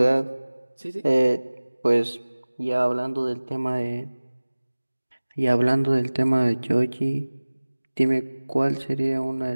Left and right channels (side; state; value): both; inverted; correlation -1.00